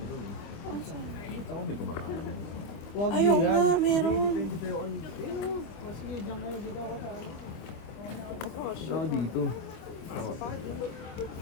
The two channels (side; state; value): right; late; 25 ms